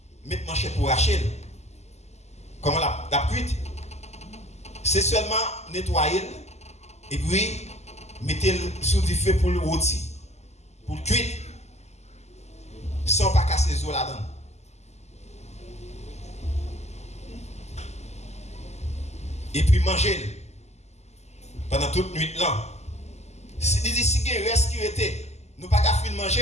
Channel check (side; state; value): right; late; 0.32 ms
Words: mettre manchette pour racher. Comment la cuite, c'est seulement nettoyer et puis mettez sous du feu pour le rôti, pour le cuire, sans pas casser les os là-dedans. Et puis manger pendant toute nuit là. Si il y a reste qui était, nous pas qu'à finir